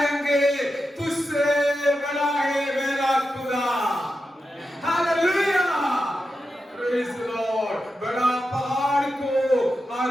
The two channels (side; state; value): both; normal; correlation 0.89